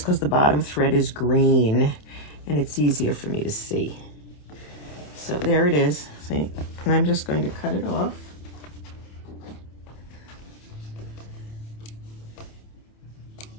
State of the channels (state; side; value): late; right; 27 ms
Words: the bottom thread is green and it's easier for me to see. So there it is, see? And I'm just going to cut it off.